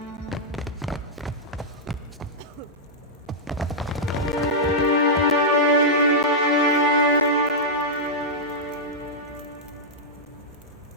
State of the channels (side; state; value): both; normal; correlation -0.08